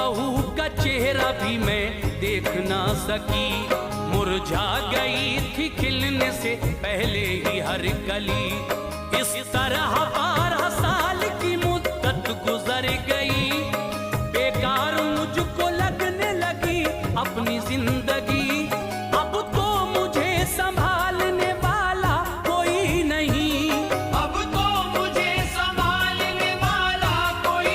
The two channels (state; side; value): identical; both; correlation 1.00